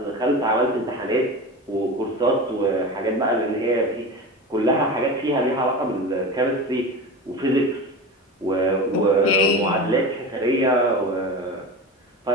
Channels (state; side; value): normal; both; correlation 0.29